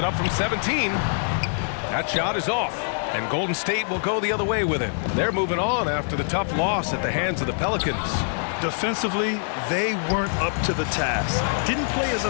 up from 17. That shot is off. And Golden State will go the other way with it. They're moving on after the tough loss at the hands of the Pelicans. Defensively, they weren't up to the task. Didn't play as a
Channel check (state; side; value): silent; right; digital silence